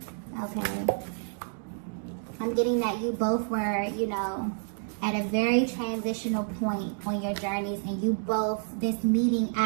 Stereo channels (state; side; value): silent; left; 57 dB below the other